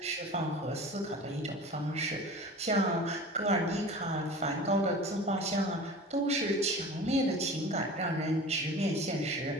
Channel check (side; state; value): both; normal; correlation 0.37